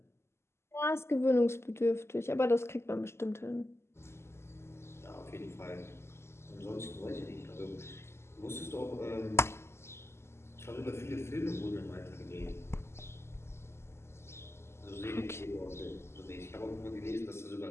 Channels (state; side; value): late; right; 0.12 ms